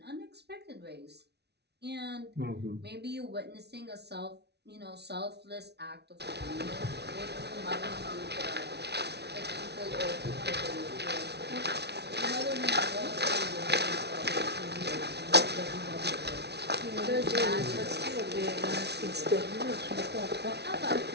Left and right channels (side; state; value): left; late; 0.49 ms